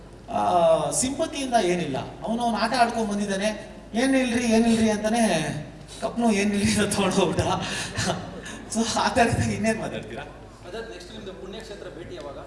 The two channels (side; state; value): both; identical; correlation 1.00